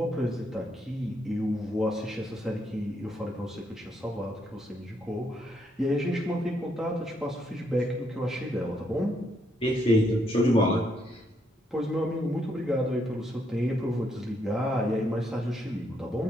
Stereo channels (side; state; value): both; normal; correlation 0.75